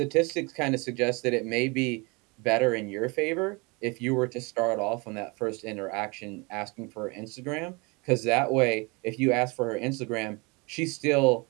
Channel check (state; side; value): quieter; left; 28.4 dB